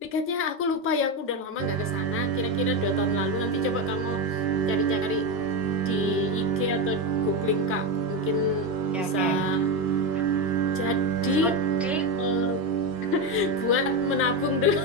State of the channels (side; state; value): both; normal; correlation 0.12